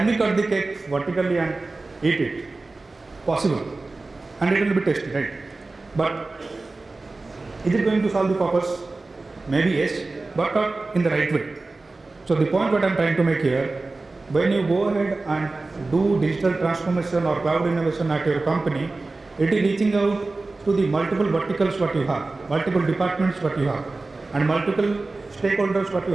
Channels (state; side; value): quieter; left; 3.4 dB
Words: we cut the cake vertically and eat it? Possible. And it will be tasty, right? But is it going to solve the purpose? Maybe yes, but not in the right way. So the point what I'm trying to make here, when you go ahead and do digital transformation or cloud innovation at your company, it is reaching out to the multiple verticals what you have, multiple departments what you have, and multiple stakeholders what you